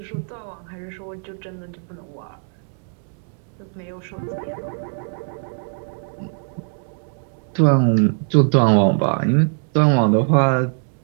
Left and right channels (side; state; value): left; silent; 55 dB below the other